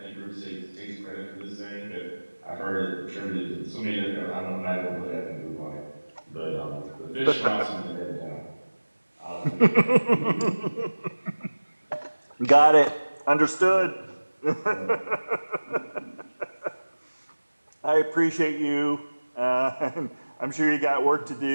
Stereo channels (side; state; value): both; inverted; correlation -1.00